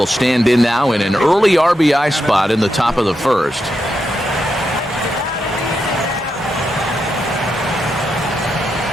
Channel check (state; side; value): normal; both; correlation 0.85